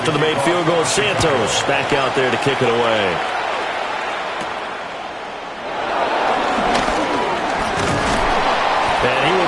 the made field goal, Santos back out there to kick it away. And he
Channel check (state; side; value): identical; both; correlation 1.00